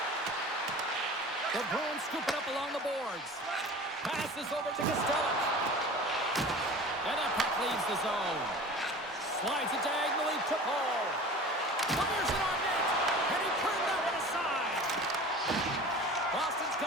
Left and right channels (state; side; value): normal; both; correlation 0.39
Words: The Bruins scoop it up along the boards. Passes over to Costello. And that puck leaves the zone. Slides it diagonally to Paul. Fires it on net. And he turned that one aside. Boston's